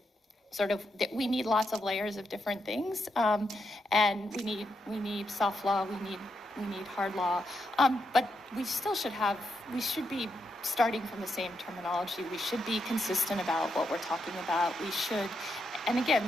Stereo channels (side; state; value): both; normal; correlation 0.82